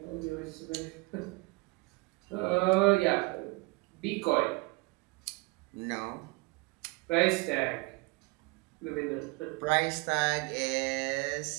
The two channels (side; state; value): left; quieter; 25.6 dB